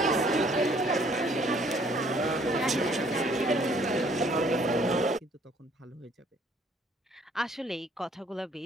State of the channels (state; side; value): normal; both; correlation 0.61